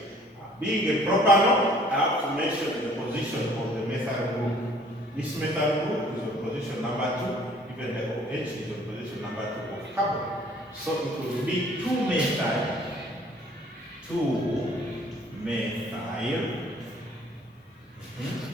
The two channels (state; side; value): normal; both; correlation 0.56